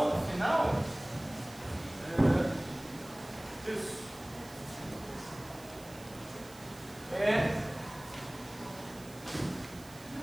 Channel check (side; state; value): right; noise; hiss, 20 dB below the sound